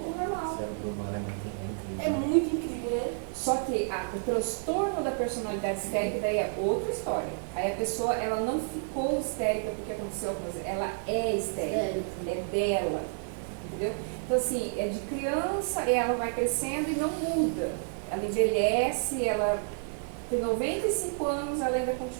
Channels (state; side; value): silent; left; digital silence